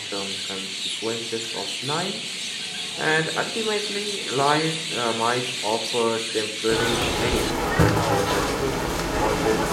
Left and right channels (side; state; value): both; identical; correlation 1.00